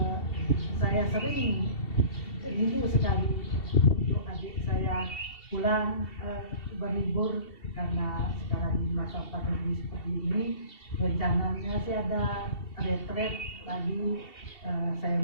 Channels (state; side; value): late; right; 2.7 ms